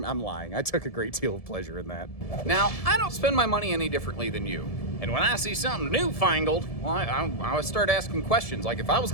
lying. I took a great deal of pleasure in that. Now, I don't spend my money any differently than you. And when I see something newfangled, well, I would start asking questions. Like, if I was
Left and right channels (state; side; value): late; right; 1.7 ms